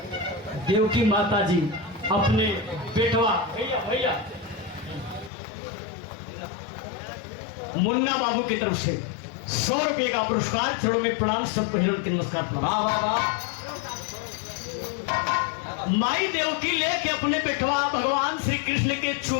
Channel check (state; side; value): drops out; right; at 5.3 s